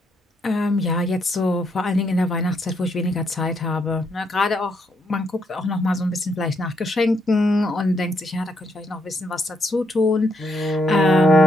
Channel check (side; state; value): both; normal; correlation 0.76